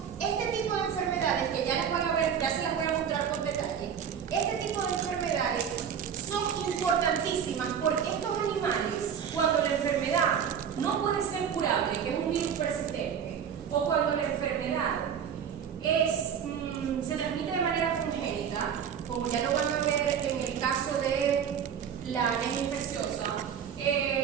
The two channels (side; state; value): left; quieter; 8.0 dB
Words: este tipo de enfermedades que ya les van a ver, ya se las voy a mostrar con detalle, este tipo de enfermedades son importantísimas porque estos animales, cuando la enfermedad no puede ser curable, que es un virus persistente, o cuando la enfermedad se transmite de manera congénita, como ya lo van a ver en el caso de la anemia infecciosa,